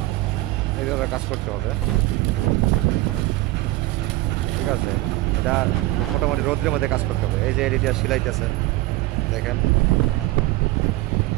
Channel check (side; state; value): left; quieter; 19.1 dB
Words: এইভাবে কাজ করতে হবে। ঠিক আছে, এটা মোটামুটি রোদ্রের মধ্যে কাজ করতে হবে। এই যে এরিয়া সিলাইতেছে, দেখেন